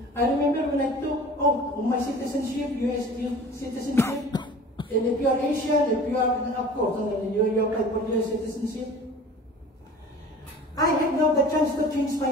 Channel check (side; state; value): both; normal; correlation 0.43